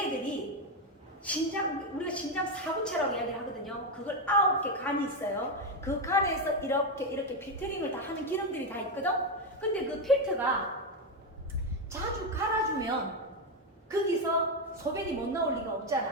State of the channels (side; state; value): both; normal; correlation 0.08